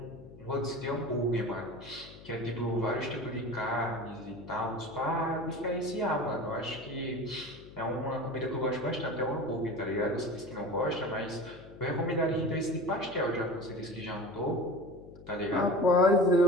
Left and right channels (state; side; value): noise; left; hum, 18 dB below the sound